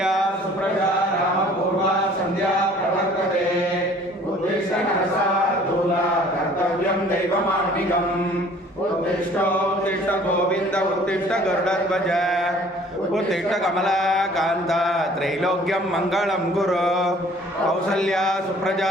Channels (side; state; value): both; normal; correlation 0.53